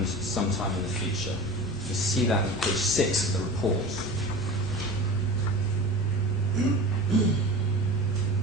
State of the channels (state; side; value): normal; both; correlation 0.34